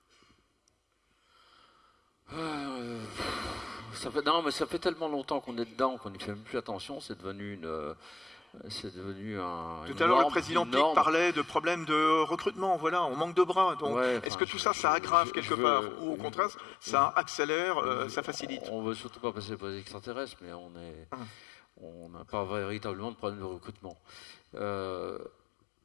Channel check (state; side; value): drops out; right; at 14.3 s